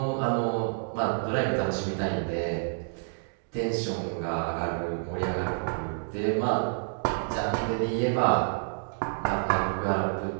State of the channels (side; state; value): left; silent; digital silence